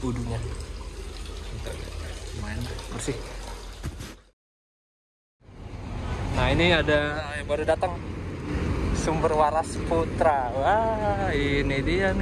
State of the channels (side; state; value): both; identical; correlation 1.00